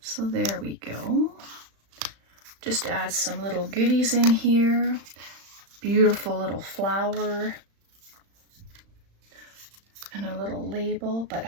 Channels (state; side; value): late; left; 35 ms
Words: there we go. Just add some little goodies in here. Beautiful little flower. And a little label, but